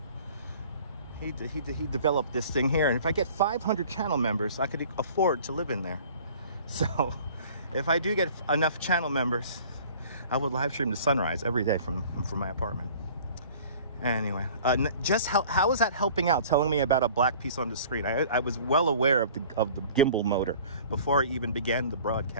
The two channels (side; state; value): both; inverted; correlation -0.48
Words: He developed this thing here, and if I get 500 channel members, I could afford to live in there. So, if I do get enough channel members, I would live stream the sunrise every day from my apartment. Anyway, just how is that helping out? Telling me about a black piece on the screen. I was well aware of the gimbal motor before I even began the